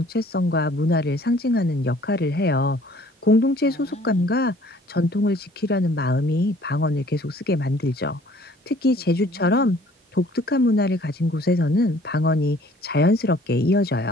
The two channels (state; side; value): normal; both; correlation 0.55